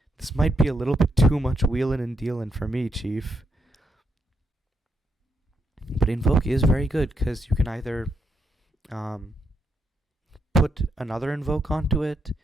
This might be a little bit too much wheelin' and dealin' for me, Chief. But Invoke is very good, because you can either put another Invoke onto it.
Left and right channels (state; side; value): normal; both; correlation 0.80